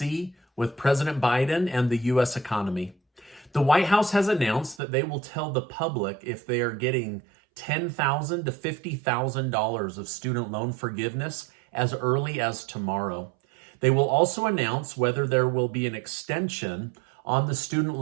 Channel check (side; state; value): left; drops out; at 4.8 s